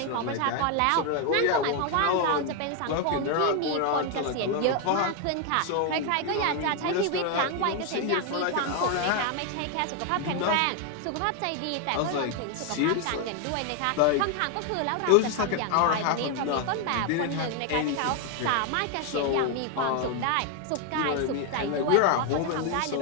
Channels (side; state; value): both; different; correlation 0.01